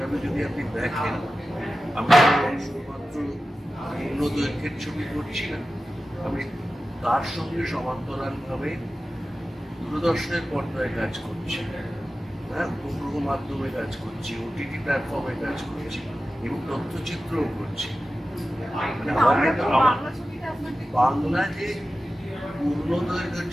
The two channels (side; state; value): both; normal; correlation 0.94